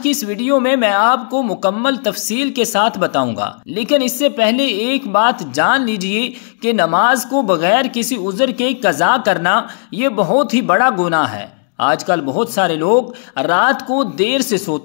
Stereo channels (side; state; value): right; silent; digital silence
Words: इस वीडियो में मैं आपको मुकम्मल तफसील के साथ बताऊंगा। लेकिन इससे पहले एक बात जान लीजिए कि नमाज को बगैर किसी उज़र के कज़ा करना ये बहुत ही बड़ा गुनाह है। आजकल बहुत सारे लोग रात को देर से